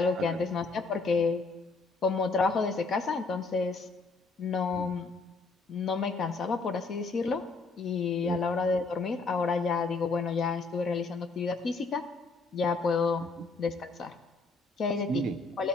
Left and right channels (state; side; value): quieter; right; 3.9 dB